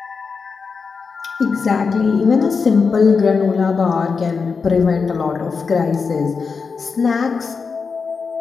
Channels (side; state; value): right; quieter; 5.1 dB